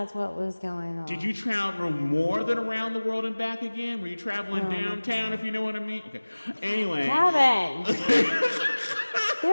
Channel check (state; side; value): inverted; both; correlation -1.00